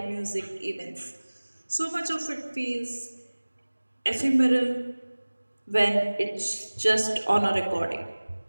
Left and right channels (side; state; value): both; inverted; correlation -1.00